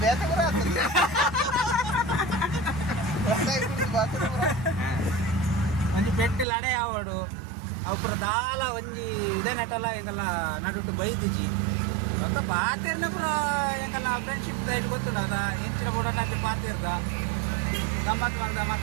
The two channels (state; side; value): drops out; left; at 6.5 s